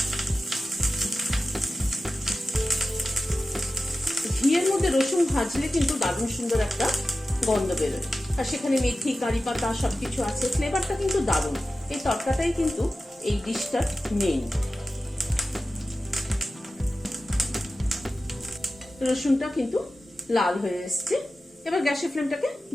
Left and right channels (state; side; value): normal; both; correlation 0.93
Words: ঘিয়ের মধ্যে রসুন ভাজলে কিন্তু দারুণ সুন্দর একটা গন্ধ বেরোয়, আর সেখানে মেথি কারি পাতা সবকিছু আছে, ফ্লেভারটা কিন্তু দারুণ। এই তরকাটাই কিন্তু এই ডিশটার মেইন। রসুনটা কিন্তু লাল হয়ে এসছে। এবার গ্যাসের ফ্লেমটাকে